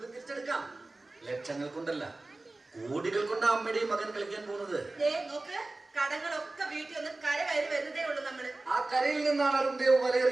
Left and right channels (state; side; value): quieter; left; 3.0 dB